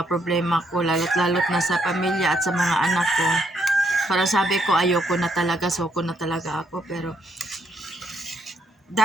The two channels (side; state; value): both; normal; correlation 0.74